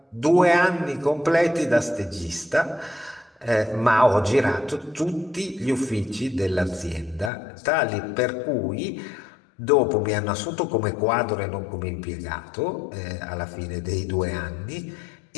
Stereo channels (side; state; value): right; drops out; at 7.3 s